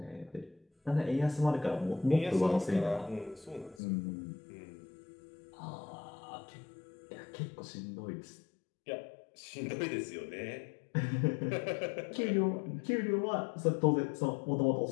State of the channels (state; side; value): drops out; right; at 3.8 s